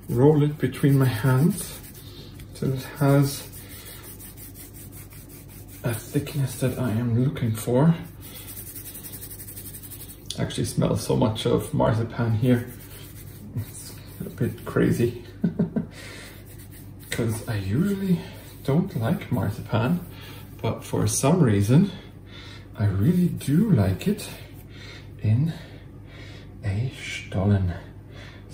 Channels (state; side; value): identical; both; correlation 1.00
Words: roll it between my hands so it has a thickness that I am looking for. Actually smells so much of marzipan here. It's a bit crazy because I usually don't like marzipan, but for some reason I really do like it in a Stollen.